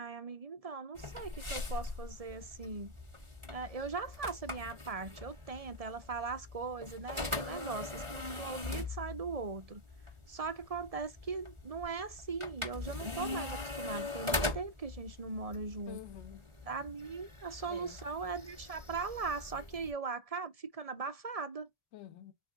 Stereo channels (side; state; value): left; late; 1.4 ms